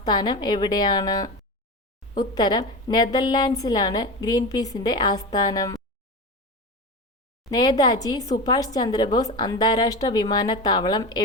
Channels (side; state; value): both; normal; correlation 0.24